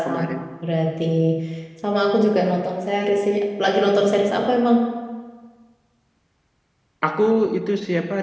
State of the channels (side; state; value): both; identical; correlation 1.00